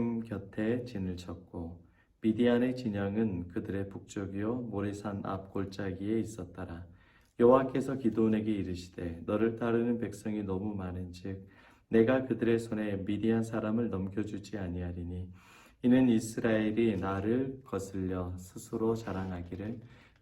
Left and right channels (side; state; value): both; identical; correlation 1.00